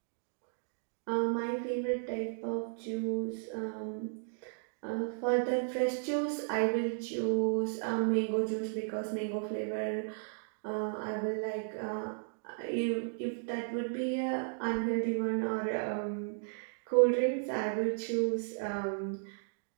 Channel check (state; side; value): silent; left; digital silence